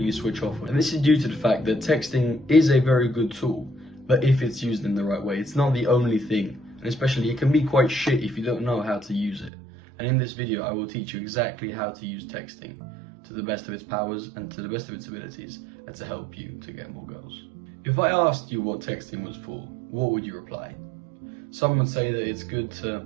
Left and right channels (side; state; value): left; drops out; at 9.5 s